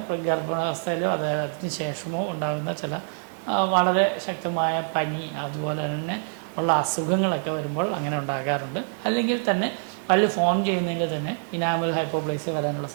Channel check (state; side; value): silent; left; digital silence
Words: ഗർഭാവസ്ഥയിലോ അതിന് ശേഷമോ ഉണ്ടാകുന്ന ചില വളരെ ശക്തമായ പനി, അതുപോലെ തന്നെ ഉള്ള അസുഖങ്ങളൊക്കെ വരുമ്പോൾ അങ്ങനെ ഉണ്ടാകാറുണ്ട്. അല്ലെങ്കിൽ തന്നെ പല്ല് ഫോം ചെയ്യുന്നതിൽ തന്നെ ഇനാമൽ ഹൈപ്പോപ്ലേസിയ വരാനുള്ള